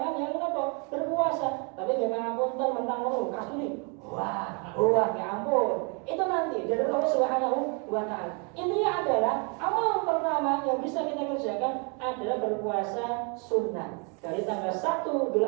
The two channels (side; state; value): left; quieter; 35.7 dB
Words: yang berpuasa. Tapi jangan apunten mentang kasturi. Wah, ya ampun. Itu nanti dari Allah Subhanahu wa taala. Intinya adalah amal pertama yang bisa kita kerjakan adalah berpuasa sunnah dari tanggal 1